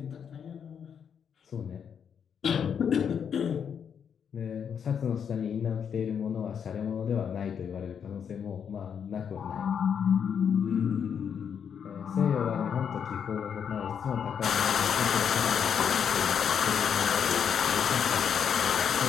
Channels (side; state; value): right; quieter; 7.6 dB